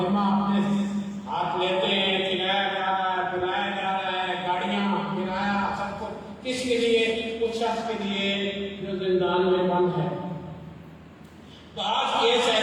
ذمہ اپنے ہاتھ لیتے ہیں، کھلایا جا رہا ہے، پلایا جا رہا ہے، گاڑیاں کرایہ سب کچھ کس کے لیے؟ اس شخص کے لیے جو زندان میں بند ہے۔ بعض کیس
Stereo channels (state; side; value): identical; both; correlation 1.00